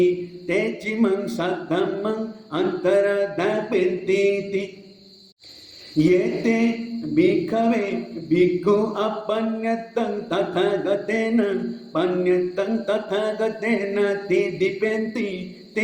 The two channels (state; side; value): identical; both; correlation 1.00